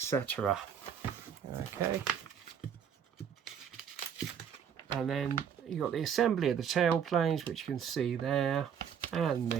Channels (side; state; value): left; quieter; 8.0 dB